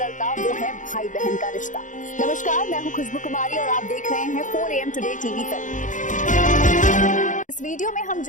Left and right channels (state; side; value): late; right; 0.37 ms